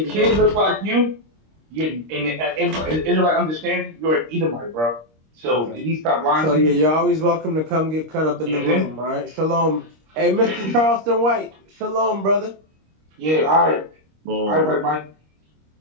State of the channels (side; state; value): left; late; 26 ms